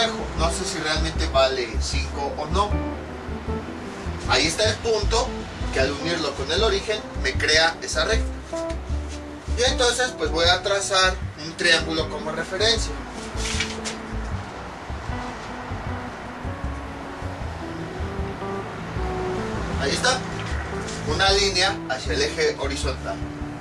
No sé si realmente vale 5 o no. Ahí está el punto que al unirlo con el origen me crea esa recta. Y entonces pues voy a trazar un triángulo como referencia. Ahí está. Una línea hacia el eje horizontal.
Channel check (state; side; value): identical; both; correlation 1.00